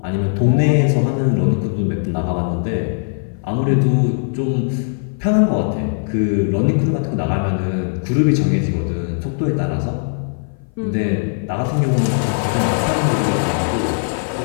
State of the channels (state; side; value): silent; right; 57 dB below the other